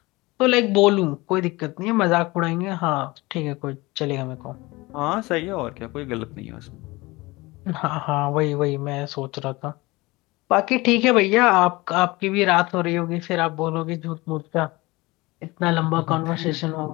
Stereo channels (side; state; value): right; quieter; 22.1 dB